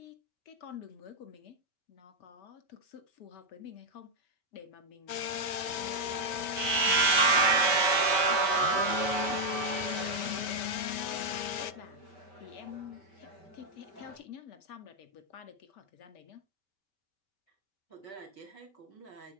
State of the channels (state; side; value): late; right; 4.8 ms